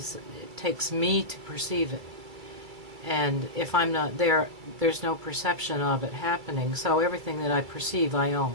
it takes me to perceive it. And if I'm not there, there's no perception of it happening. So everything that I perceive, I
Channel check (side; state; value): left; late; 2.3 ms